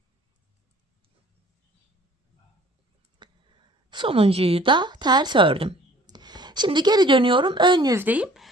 Sonuncuyu da ters ördüm. Şimdi geri dönüyorum. Ön yüzdeyim.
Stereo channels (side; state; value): both; normal; correlation 0.52